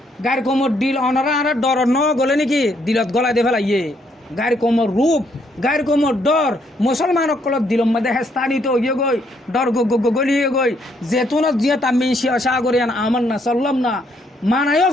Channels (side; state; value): both; normal; correlation 0.71